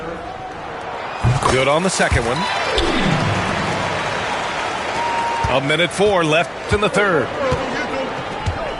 Good on the second one. 1:04 left in the third.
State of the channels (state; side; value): identical; both; correlation 1.00